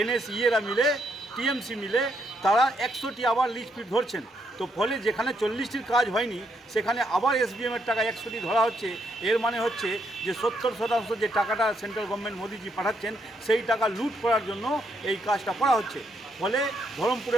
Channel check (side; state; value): both; normal; correlation 0.76